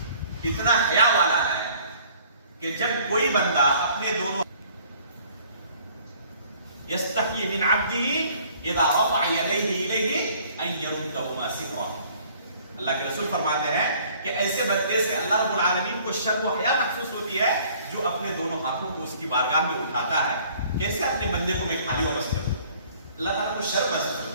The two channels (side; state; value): both; inverted; correlation -0.56